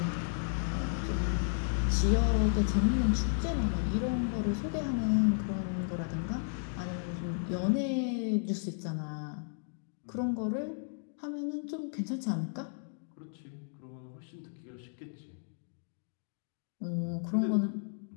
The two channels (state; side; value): silent; right; digital silence